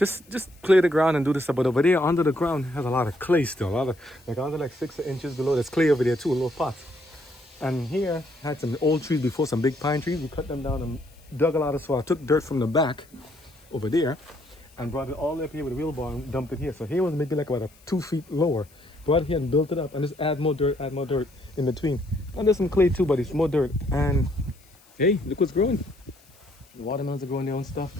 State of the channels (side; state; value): left; noise; hiss, 29 dB below the sound